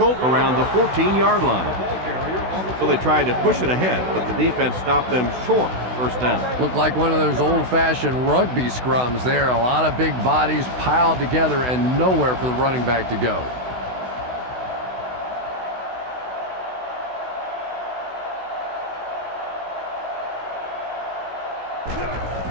around the 14-yard line. So they tried to push it ahead, but the defense stopped them short. First down. Looked like one of those old-fashioned rugby scrums there. A lot of big bodies piled together and nowhere for the running back to go.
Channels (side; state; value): left; late; 16 ms